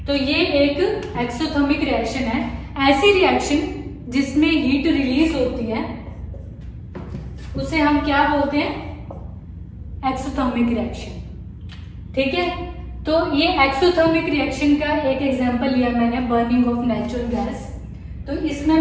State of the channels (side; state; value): both; identical; correlation 1.00